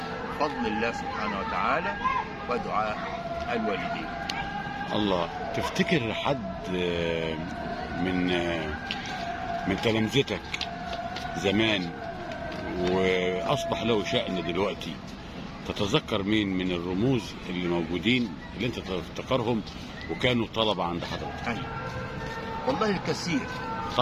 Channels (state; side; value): identical; both; correlation 1.00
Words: بفضل الله سبحانه وتعالى ودعاء الوالدين. الله. تفتكر حد من تلامذتك زمان واصبح له شأن دلوقتي، تتذكر مين من الرموز اللي موجودين اللي انت تفتكرهم وكانوا طلبة عند حضرتك؟ أيوة والله الكثير.